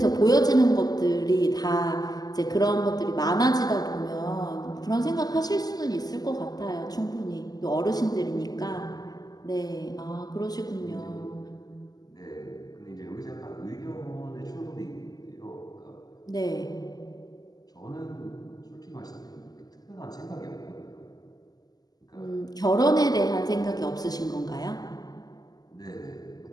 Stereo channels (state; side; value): late; right; 0.19 ms